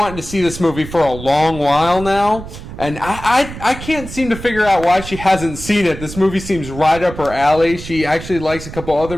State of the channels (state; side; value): noise; right; rumble, 12 dB below the sound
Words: to see this movie for a long while now, and I can't seem to figure out why she hasn't seen it. This movie seems right up her alley. She actually likes a couple other